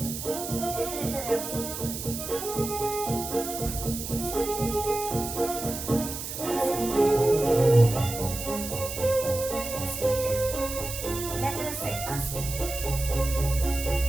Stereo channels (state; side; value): noise; right; hiss, 7 dB below the sound